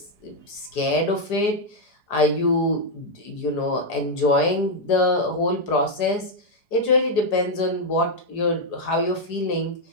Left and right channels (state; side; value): late; right; 4.8 ms